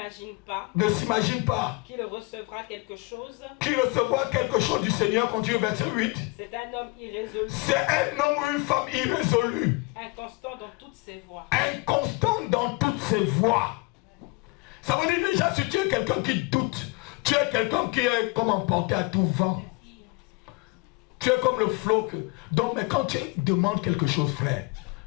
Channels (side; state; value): right; quieter; 26.5 dB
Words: s'imagine pas qu'il recevra quelque chose du Seigneur. Continue verset 8. C'est un homme irrésolu. C'est un homme ou une femme irrésolue. Inconstant dans toutes ses voies. Inconstant dans toutes ses voies. Ça veut dire déjà, si tu es quelqu'un qui doute, tu es quelqu'un qui est comme emporté à tout vent. Tu es comme le flot. Donc, mais quand tu demandes quelque chose, frère,